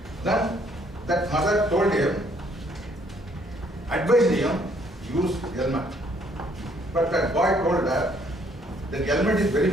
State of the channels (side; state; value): both; normal; correlation 0.65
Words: Then that mother told him, advised him, use helmet. But that boy told her, the helmet is very